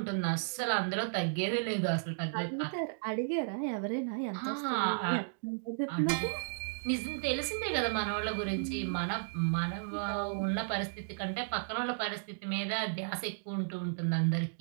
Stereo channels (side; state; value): left; silent; digital silence